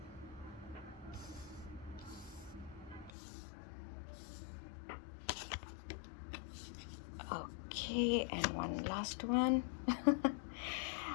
Okay, and one last one.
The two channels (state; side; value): drops out; right; at 3.1 s